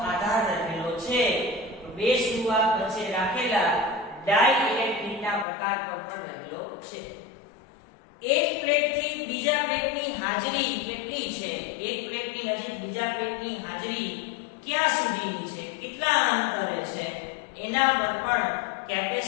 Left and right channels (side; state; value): right; drops out; at 5.5 s